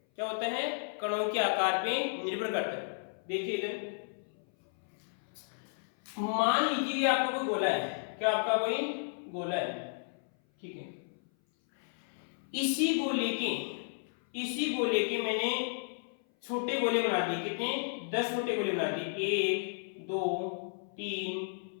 क्या होता है? कणों के आकार पे निर्भर करता है। देखिए इधर मान लीजिए कि आपका कोई गोला है। क्या आपका कोई गोला है, ठीक है। इसी गोले के मैंने छोटे गोले बना दिए। कितने? 10 छोटे गोले बना दिए। 1 2 3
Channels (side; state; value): right; silent; 56 dB below the other